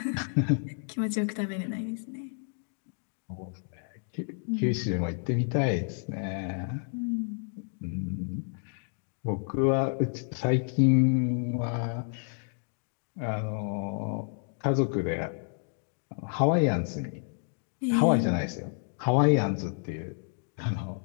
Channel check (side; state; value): right; silent; 58 dB below the other